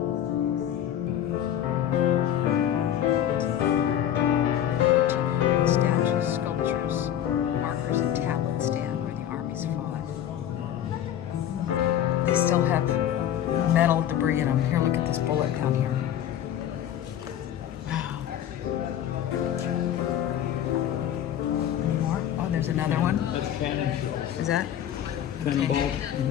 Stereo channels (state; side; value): quieter; right; 10.8 dB